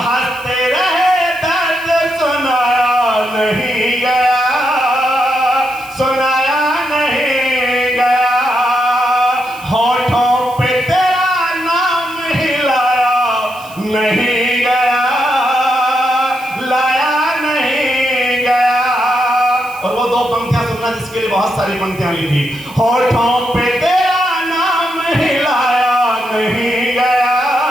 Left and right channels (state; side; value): noise; right; hiss, 21 dB below the sound